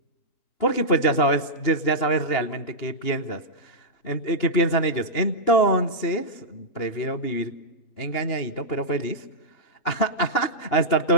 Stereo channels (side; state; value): right; late; 2.9 ms